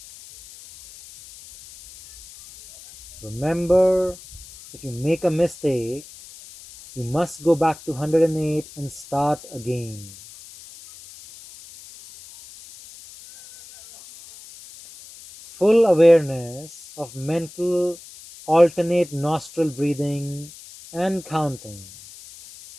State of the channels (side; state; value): left; noise; hiss, 18 dB below the sound